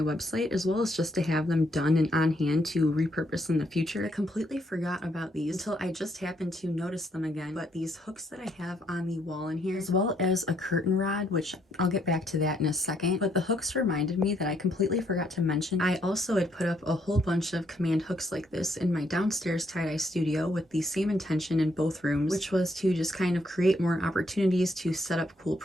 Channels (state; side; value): normal; both; correlation 0.72